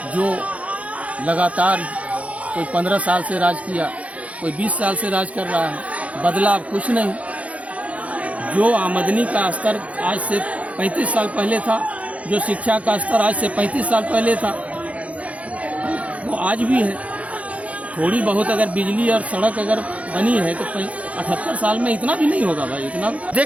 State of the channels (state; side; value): late; left; 0.066 ms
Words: जो लगातार कोई 15 साल से राज किया, कोई 20 साल से राज कर रहा है, बदलाव कुछ नहीं। जो आमदनी का स्तर आज से 35 साल पहले था, जो शिक्षा का स्तर आज से 35 साल पहले था, वो आज भी है। थोड़ी बहुत अगर बिजली और सड़क अगर बनी है तो 78 साल में इतना भी नहीं होगा भाई, इतना।